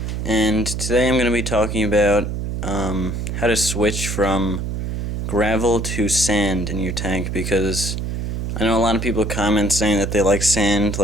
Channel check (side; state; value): right; noise; hum, 3 dB below the sound